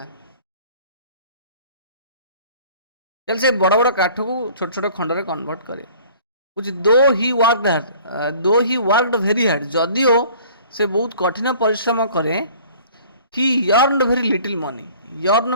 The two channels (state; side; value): inverted; both; correlation -0.50